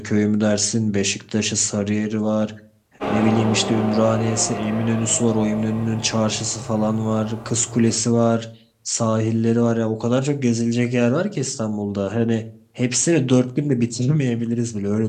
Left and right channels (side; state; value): both; identical; correlation 1.00